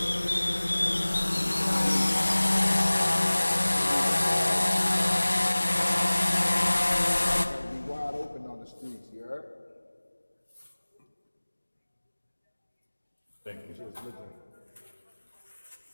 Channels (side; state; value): both; inverted; correlation -1.00